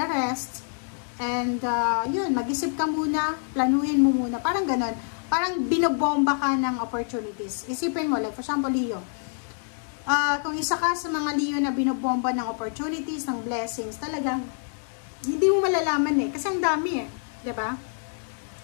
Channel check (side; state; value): right; silent; 61 dB below the other